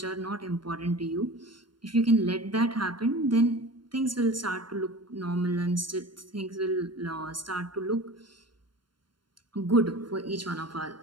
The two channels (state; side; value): late; left; 0.72 ms